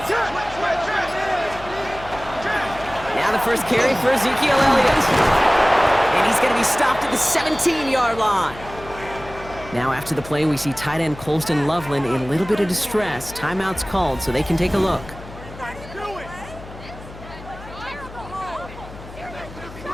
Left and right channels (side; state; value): left; noise; hum, 16 dB below the sound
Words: Now the first carry for Ezekiel Elliott. And he's going to be stopped at the 17-yard line. Now after the play, we see tight end Colston Loveland in a little bit of distress. Timeout's called so they can take a look.